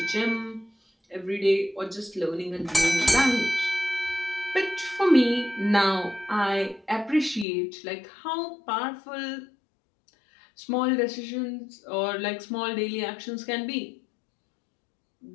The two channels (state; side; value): drops out; right; at 7.5 s